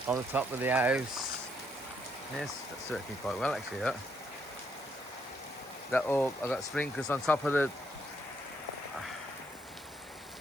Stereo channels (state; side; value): normal; both; correlation 0.73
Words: on the top of the house. Yes, that's working quite well actually. That all I got sprinklers on top of the.